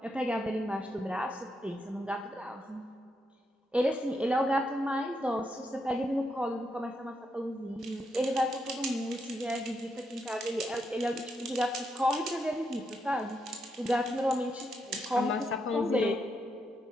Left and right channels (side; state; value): both; normal; correlation 0.81